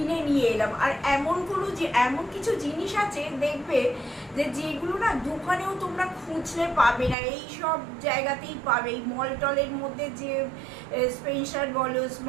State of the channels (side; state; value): left; drops out; at 7.2 s